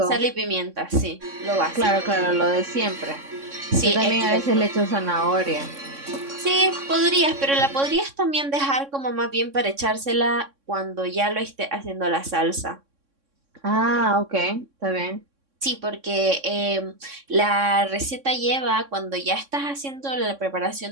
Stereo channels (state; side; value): late; left; 3.6 ms